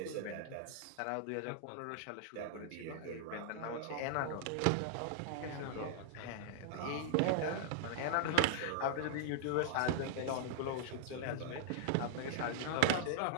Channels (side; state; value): both; different; correlation -0.01